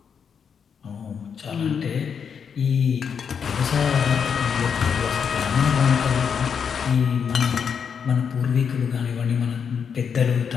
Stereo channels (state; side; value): quieter; right; 6.9 dB